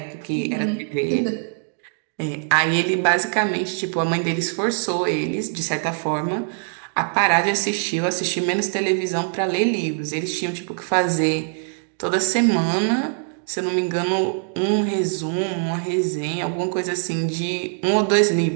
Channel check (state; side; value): silent; left; digital silence